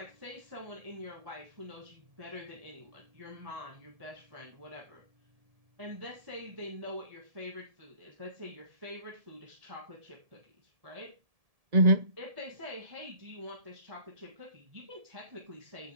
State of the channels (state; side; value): late; left; 1.7 ms